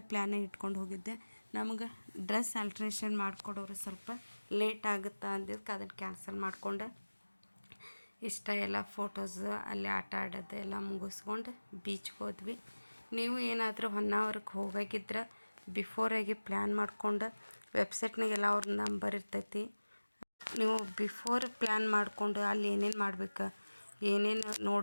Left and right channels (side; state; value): both; inverted; correlation -1.00